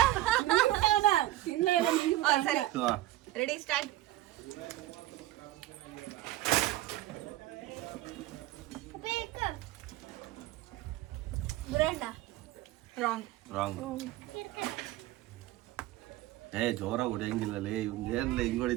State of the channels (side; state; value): left; quieter; 15.9 dB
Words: ಸರಿ ರೆಡಿ ಸ್ಟಾರ್ಟ್. ರಾಂಗ್. ರಾಂಗ್. ಜೋರ ಹೊಡೆಯಂಗಿಲ್ಲಲೇ ಇವ್ನ್ ಏನ್ಲ ಹಿಂಗ್